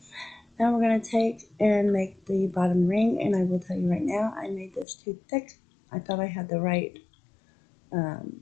Now we're going to take and make the bottom ring, and I will tell you right now, I made this too thick. I thought I had the right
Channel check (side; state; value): right; drops out; at 4.9 s